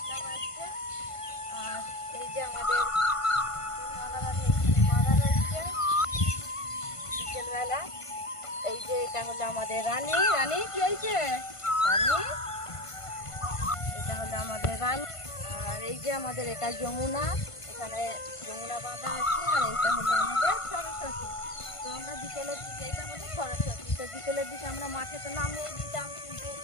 বাজছে। আর এই যে আমাদের মাদারানি এখানে বাঁধা রয়েছে বিকেলবেলা। এই যে এটা হলো আমাদের রানী। রানী কি হয়েছে? রানী, এটা হলো আমাদের রানী। আর এই যে আমাদের এটা যমুনা, এখানে যমুনা বাঁধা আছে। আর এইটা হলো আমাদের সরস্বতী। তো আমরা বিকেলের দিকে, এটা হলো সরস্বতী, তো বিকেলের দিকে আমরা মাঠে তো নামিয়ে দিতাম, কিন্তু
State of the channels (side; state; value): right; late; 1.5 ms